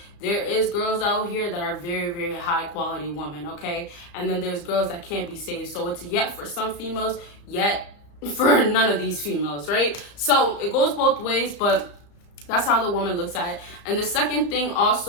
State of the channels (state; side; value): late; right; 34 ms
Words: there is girls out here that are very, very high quality women, okay? And then there's girls that can't be saved. So it's yet for some females, yet for none of these females, right? So it goes both ways, but that's how the woman looks at it. And the second thing